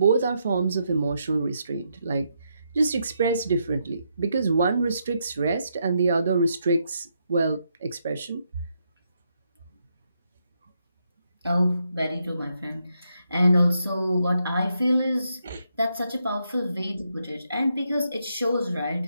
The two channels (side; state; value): both; inverted; correlation -0.79